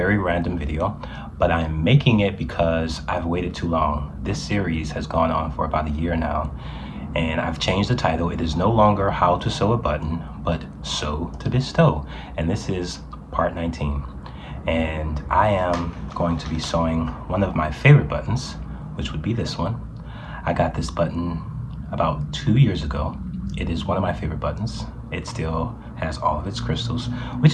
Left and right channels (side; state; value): both; identical; correlation 1.00